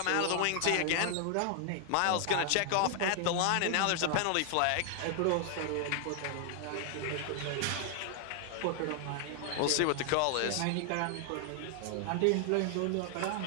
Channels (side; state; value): both; different; correlation 0.00